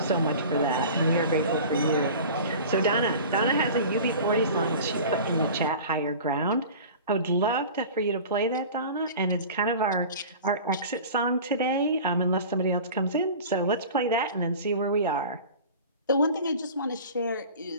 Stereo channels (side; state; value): both; inverted; correlation -0.38